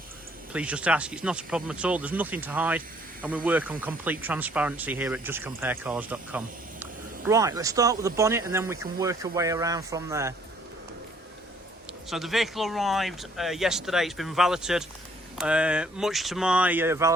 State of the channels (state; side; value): normal; both; correlation 0.62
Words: please just ask. It's not a problem at all. There's nothing to hide and we work on complete transparency here at justcomparecars.com. Right, let's start with the bonnet and then we can work our way around from there. So the vehicle arrived yesterday. It's been valeted. Much to my